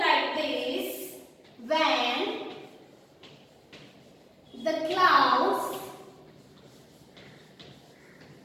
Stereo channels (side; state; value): both; identical; correlation 1.00